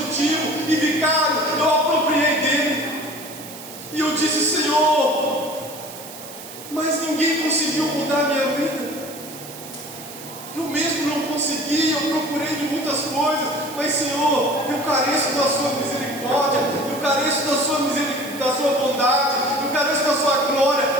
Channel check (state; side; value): noise; right; hiss, 14 dB below the sound